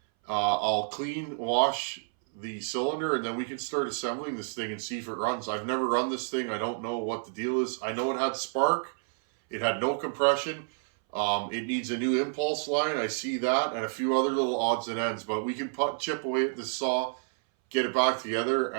I'll clean, wash the cylinder, and then we can start assembling this thing and see if it runs. I've never run this thing. I don't know what the deal is. I know it had spark. It had no compression. It needs a new impulse line. I see that, and a few other little odds and ends. But we can chip away at this saw, get it back together,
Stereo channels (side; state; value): left; silent; 58 dB below the other